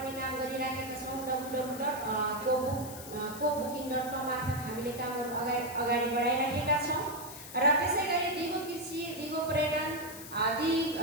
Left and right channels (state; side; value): noise; left; hiss, 13 dB below the sound